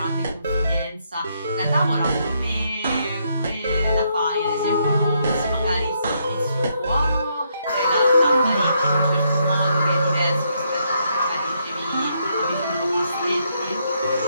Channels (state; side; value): inverted; both; correlation -0.75